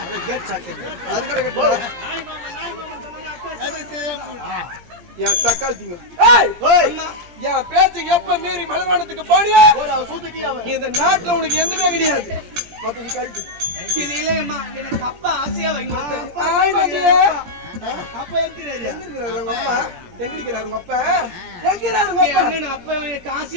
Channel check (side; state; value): left; late; 17 ms